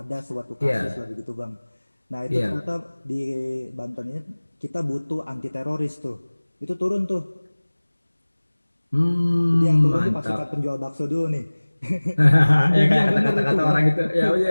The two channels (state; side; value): inverted; both; correlation -1.00